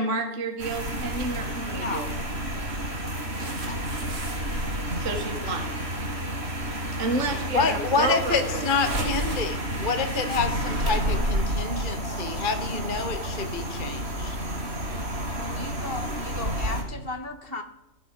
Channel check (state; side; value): late; left; 3.0 ms